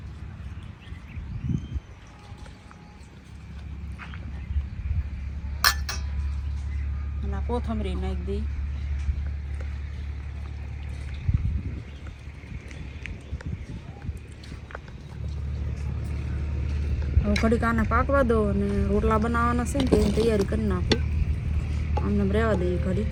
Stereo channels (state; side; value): identical; both; correlation 1.00